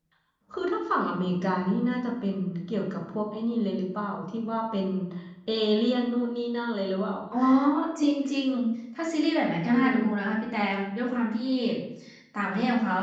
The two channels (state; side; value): identical; both; correlation 1.00